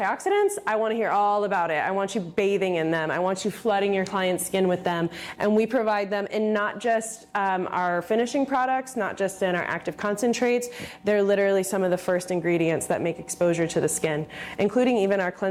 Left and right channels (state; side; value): identical; both; correlation 1.00